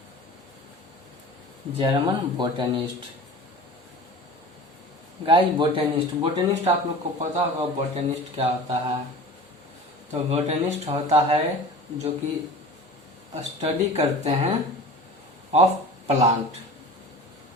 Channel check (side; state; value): both; normal; correlation 0.38